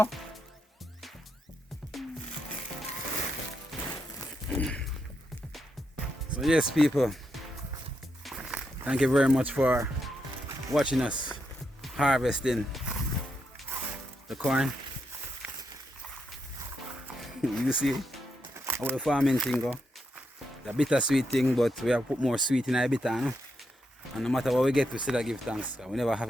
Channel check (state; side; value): normal; both; correlation 0.82